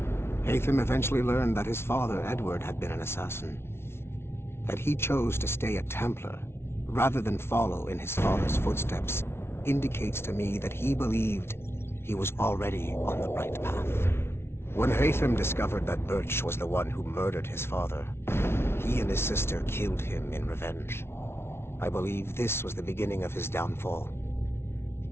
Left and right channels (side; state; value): right; late; 0.12 ms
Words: Haytham eventually learned that his father, Edward, had been an assassin. That he chose to stay a Templar, rather than follow in his father's footsteps, indicates to me that he believed he was already on the right path. When Haytham discovered that Birch was the one who murdered his father, he and his sister killed him in revenge. I believe this was the beginning of his downfall.